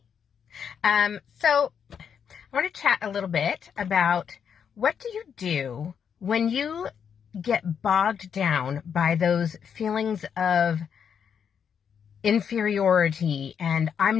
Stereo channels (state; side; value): quieter; right; 7.5 dB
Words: So I want to chat a little bit about what do you do when you get bogged down by those feelings of inferiority and